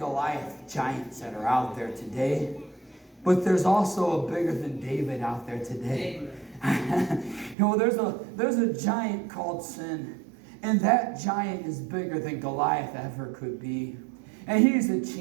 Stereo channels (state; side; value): drops out; left; at 7.6 s